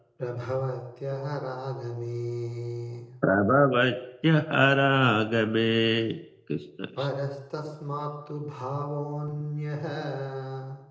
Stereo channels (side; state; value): both; identical; correlation 1.00